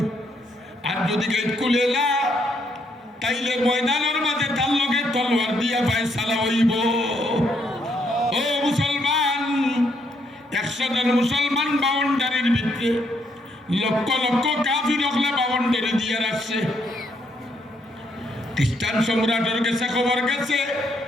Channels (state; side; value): normal; both; correlation 0.73